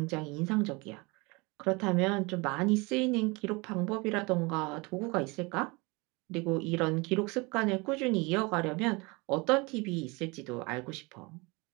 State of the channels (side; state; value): left; quieter; 26.4 dB